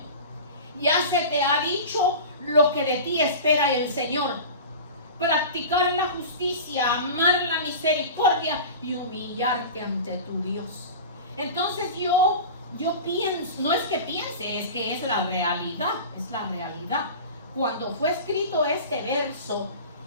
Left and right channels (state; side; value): inverted; both; correlation -0.33